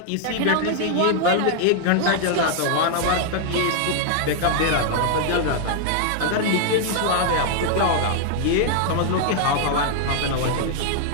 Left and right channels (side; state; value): both; different; correlation 0.00